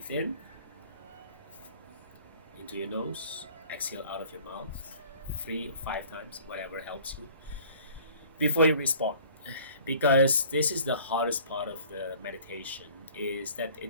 in into your nose, exhale out of your mouth 3 or 5 times, whatever helps you, before you respond. Because this is the hardest part of the meditation, is that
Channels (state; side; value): inverted; both; correlation -0.50